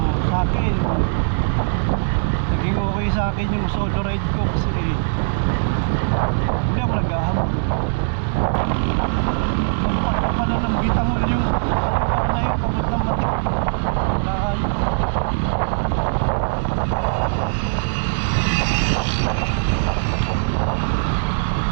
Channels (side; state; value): left; silent; digital silence